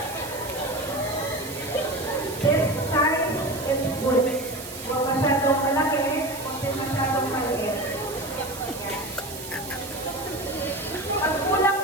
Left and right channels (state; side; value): noise; right; hiss, 12 dB below the sound